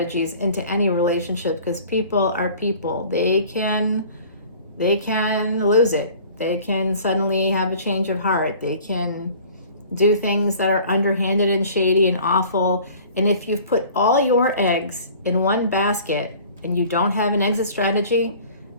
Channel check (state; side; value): inverted; both; correlation -0.47